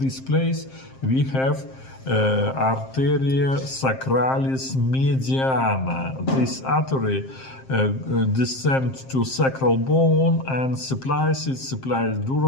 place we have arteria sacralis mediana. This artery descends to sacral bone and supplies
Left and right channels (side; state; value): right; late; 7.6 ms